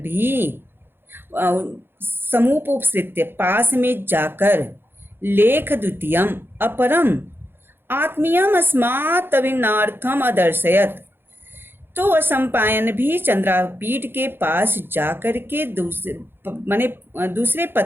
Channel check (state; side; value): late; left; 0.10 ms